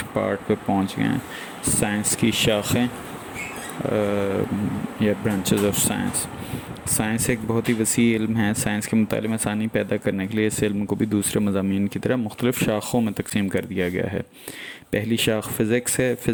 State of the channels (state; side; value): identical; both; correlation 1.00